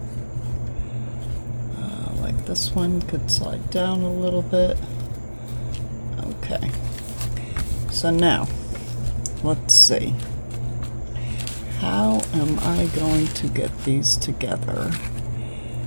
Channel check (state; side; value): inverted; both; correlation -1.00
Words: like this one could slide down a little bit. Okay, so now let's see, how am I going to get these together?